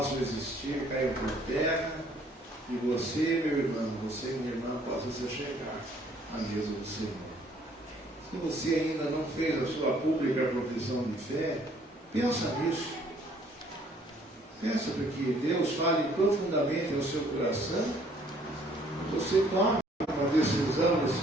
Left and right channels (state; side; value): normal; both; correlation 0.61